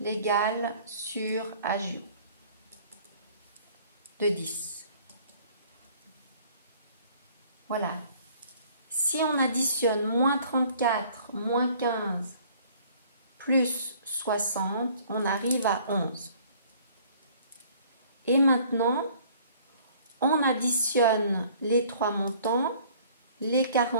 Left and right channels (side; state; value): both; inverted; correlation -0.55